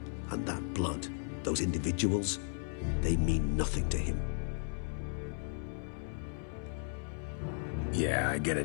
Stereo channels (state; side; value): silent; right; 54 dB below the other